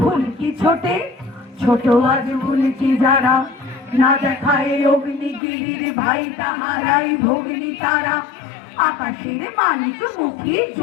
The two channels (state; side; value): drops out; right; at 5.4 s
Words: ছোটে, ছোট আজ উল্কি যারা, না দেখায় অগ্নিগিরির ভাই তাহারাই ভগ্নি তারা। আকাশের মালিক মুখী